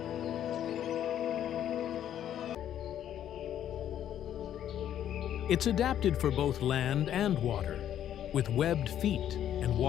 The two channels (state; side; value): quieter; right; 10.7 dB